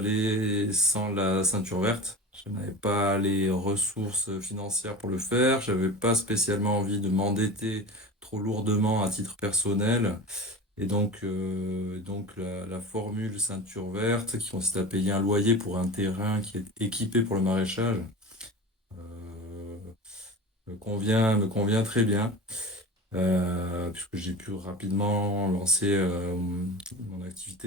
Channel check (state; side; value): normal; both; correlation 0.32